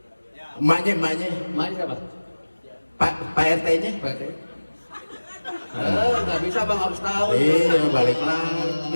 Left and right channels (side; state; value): both; inverted; correlation -1.00